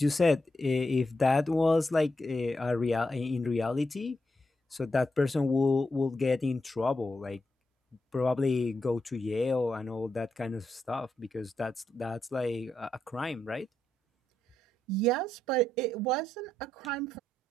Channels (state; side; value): normal; both; correlation 0.84